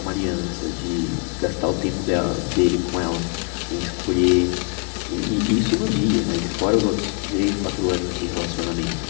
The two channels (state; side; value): quieter; right; 34.1 dB